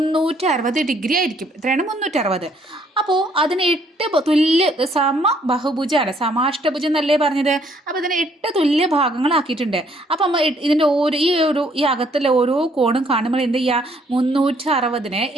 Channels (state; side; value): normal; both; correlation 0.66